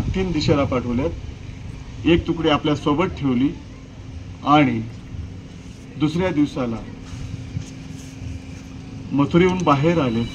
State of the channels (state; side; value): identical; both; correlation 1.00